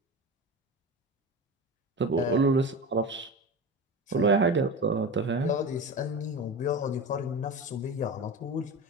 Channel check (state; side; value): normal; both; correlation 0.28